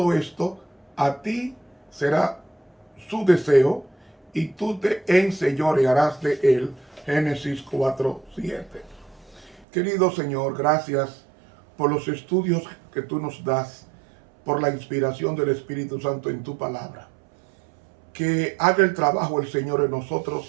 esto, a ti será su deseo y tú te enseñorearás de él. Génesis 4:7. Querido Señor, gracias por los estudios que tú nos das, por la inspiración del Espíritu Santo en tu palabra. Que haga el trabajo el Señor en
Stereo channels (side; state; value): left; drops out; at 9.7 s